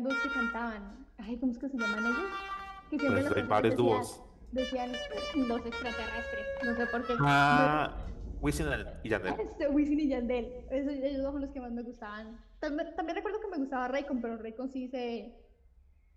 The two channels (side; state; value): both; identical; correlation 1.00